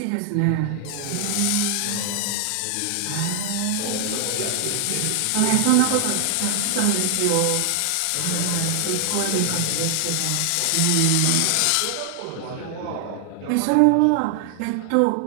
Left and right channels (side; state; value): both; different; correlation 0.00